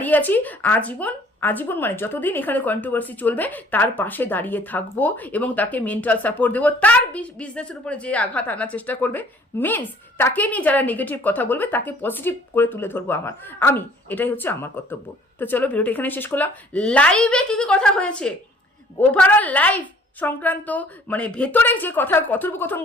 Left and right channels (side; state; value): both; normal; correlation 0.56